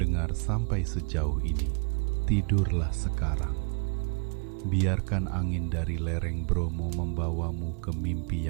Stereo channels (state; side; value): quieter; left; 35.7 dB